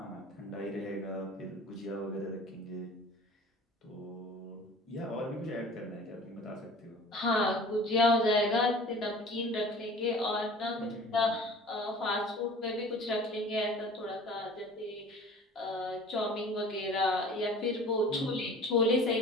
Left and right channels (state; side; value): normal; both; correlation 0.44